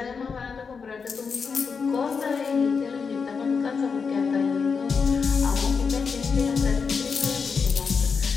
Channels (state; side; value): quieter; right; 5.5 dB